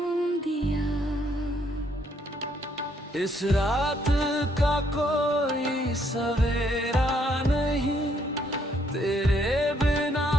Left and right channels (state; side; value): normal; both; correlation 0.70